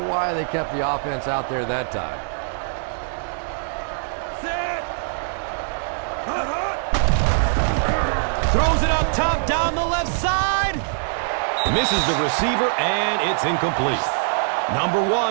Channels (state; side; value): silent; left; digital silence